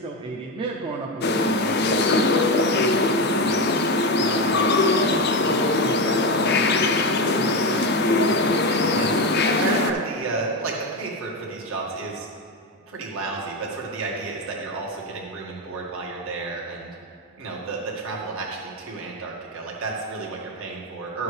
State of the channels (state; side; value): normal; both; correlation 0.14